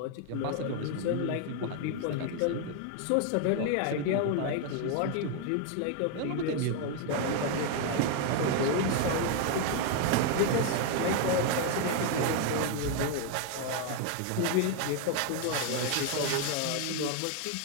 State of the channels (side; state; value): both; different; correlation 0.01